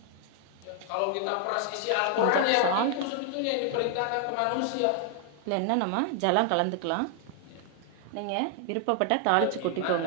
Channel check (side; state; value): both; different; correlation 0.00